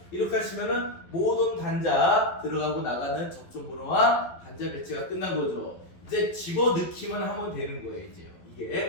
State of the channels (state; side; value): late; right; 11 ms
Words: 이렇게 하시면은 모든 단자 들어가고 나가는 접점 번호와 단자 배치가 끝난 거죠. 이제 집어넣기만 하면 되는 거예요, 이제요.